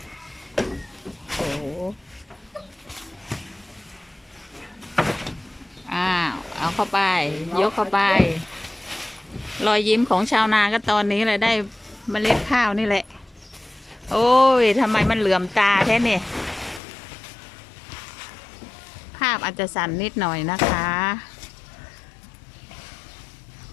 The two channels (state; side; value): drops out; right; at 16.8 s